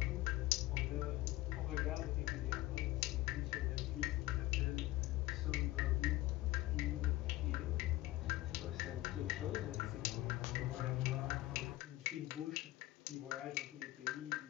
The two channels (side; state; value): right; quieter; 17.5 dB